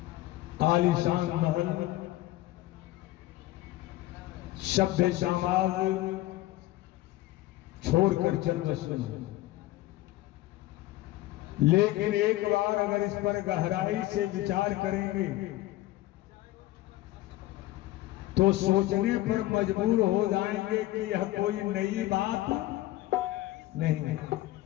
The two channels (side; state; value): right; quieter; 16.5 dB